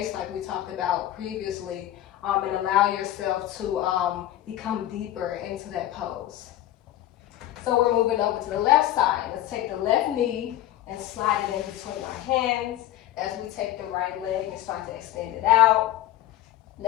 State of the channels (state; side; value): quieter; right; 13.5 dB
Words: like we talked about previously, and allow yourself to become deeper into that pose. So we're moving over to the left side. Let's take the left knee and slide it in between our hands as we take the right leg and start to extend it out.